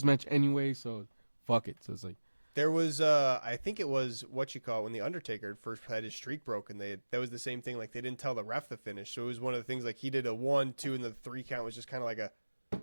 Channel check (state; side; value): inverted; both; correlation -1.00